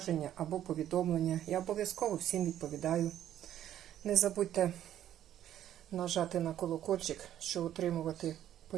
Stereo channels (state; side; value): quieter; left; 11.4 dB